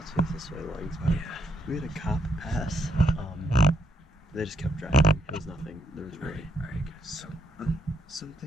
face this way, Langs, but we had a cop pass. They just kept driving. It was nothing. There was really. Alright, guys. So,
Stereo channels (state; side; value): normal; both; correlation 0.76